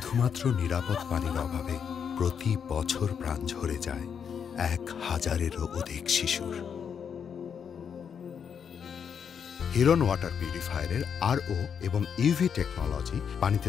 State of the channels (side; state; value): right; quieter; 7.3 dB